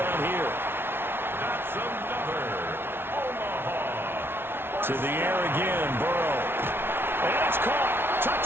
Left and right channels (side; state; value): left; late; 0.11 ms